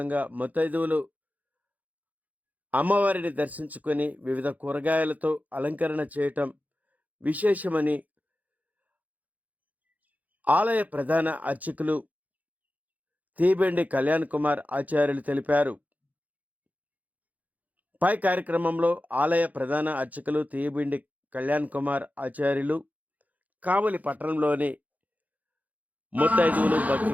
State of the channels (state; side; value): late; left; 0.078 ms